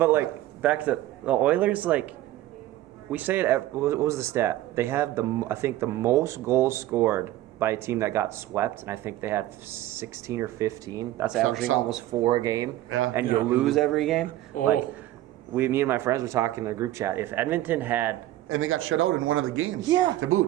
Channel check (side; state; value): left; quieter; 14.9 dB